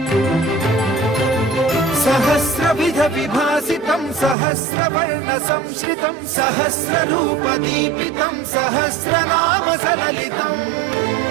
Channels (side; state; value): left; drops out; at 4.4 s